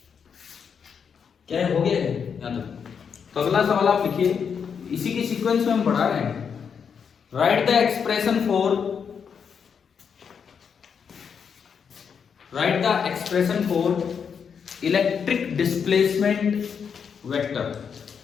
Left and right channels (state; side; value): quieter; right; 6.8 dB